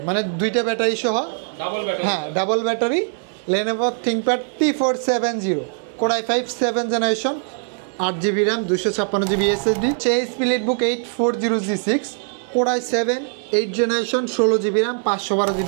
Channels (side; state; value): left; silent; digital silence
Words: মানে দুইটা ব্যাটারি সহ ডাবল ব্যাটারি। হ্যাঁ double battery. Lenovo ThinkPad T470 core i 5 7 generation 8GB RAM 256GB SSD। HP Leadbook 840G6 core i 7 8 generation 16GB RAM